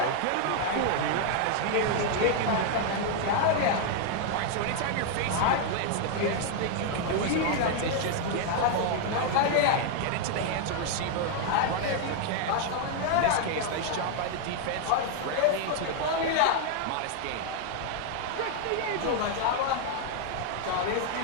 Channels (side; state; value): both; different; correlation 0.00